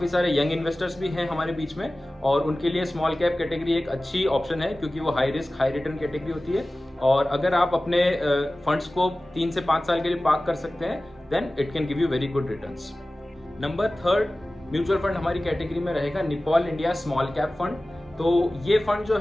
सारे यंग इन्वेस्टर्स भी हैं हमारे बीच में और उनके लिए स्मॉल कैप कैटेगरी एक अच्छी ऑप्शन है क्योंकि वो high risk high return category होती है। और अगर आप अपने फंड्स को 3 से 5 साल के लिए पार्क कर सकते हैं then it can give you very good returns. Number 3 mutual fund हमारी कैटेगरी में रहेगा Nippon India small cap fund. तो ये फंड जो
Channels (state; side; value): normal; both; correlation 0.97